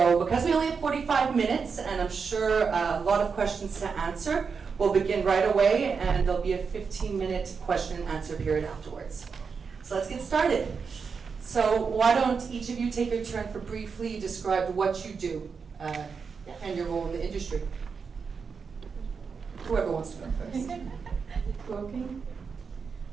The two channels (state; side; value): quieter; left; 5.6 dB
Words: because we only have 45 minutes, and I'm sure a lot of questions to answer, we'll begin right away, and there'll be a 15-minute question and answer period afterwards. So let's get started. So why don't each of you take your turn for briefly describe what you do and your role in the industry. Whoever wants to go first. Is it working?